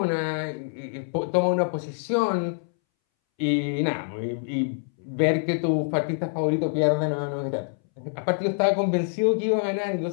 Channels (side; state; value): right; silent; 61 dB below the other